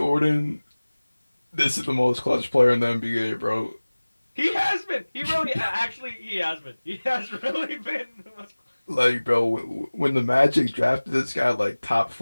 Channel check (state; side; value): inverted; both; correlation -1.00